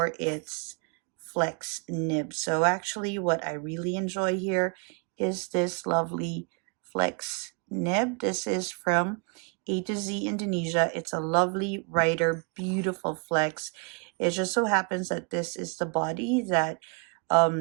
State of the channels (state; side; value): quieter; left; 35.2 dB